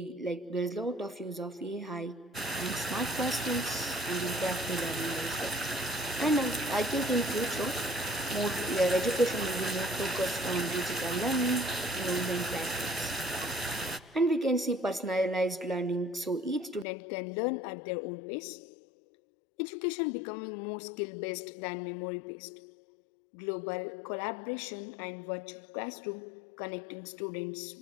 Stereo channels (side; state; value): right; drops out; at 16.9 s